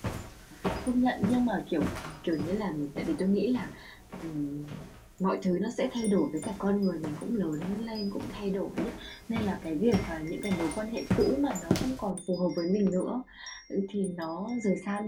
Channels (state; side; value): identical; both; correlation 1.00